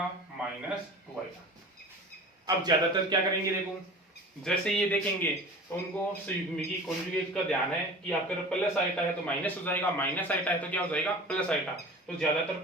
माइनस 2 आइटा। अब ज्यादातर क्या करेंगे, देखो जैसे ये देखेंगे तो उनको संयुग्मी कॉन्जुगेट का ध्यान है कि आपका प्लस आइटा है तो माइनस हो जाएगा, माइनस आइटा है तो क्या हो जाएगा, प्लस आइटा। तो ज्यादातर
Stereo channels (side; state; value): both; normal; correlation 0.39